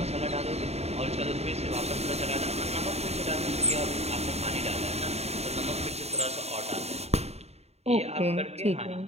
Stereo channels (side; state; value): left; late; 0.31 ms